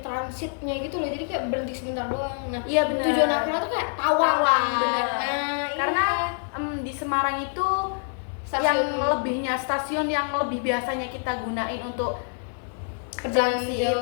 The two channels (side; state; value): right; silent; 61 dB below the other